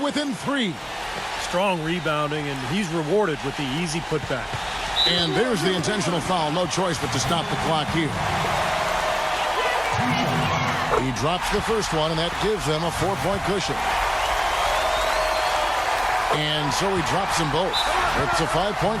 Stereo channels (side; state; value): both; identical; correlation 1.00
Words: within 3. Strong rebounding, and he's rewarded with the easy putback. And there's the intentional foul. No choice but to stop the clock here. He drops the first one, and that gives them a 4-point cushion. And so he drops them both. It's a 5-point